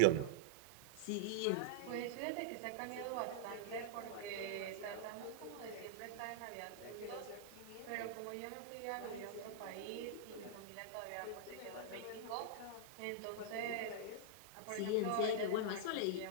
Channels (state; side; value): different; both; correlation -0.02